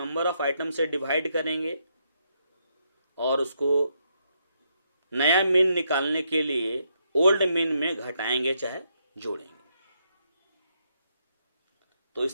ऑफ आइटम से डिवाइड करेंगे और उसको नया मीन निकालने के लिए ओल्ड मीन में घटाएंगे चाहे जोड़ेंगे। तो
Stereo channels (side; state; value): both; inverted; correlation -0.77